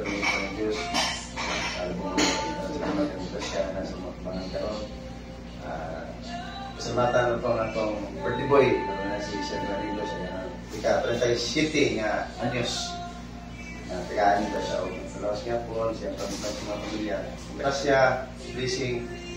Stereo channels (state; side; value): identical; both; correlation 1.00